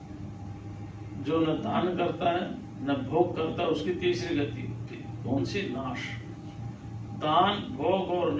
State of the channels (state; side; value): identical; both; correlation 1.00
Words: जो न दान करता है न भोग करता, उसकी तीसरी गति होती है। कौन सी? नाश। दान, भोग और